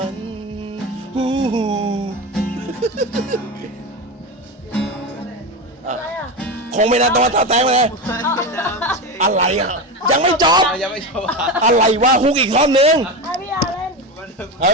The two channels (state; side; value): normal; both; correlation 0.20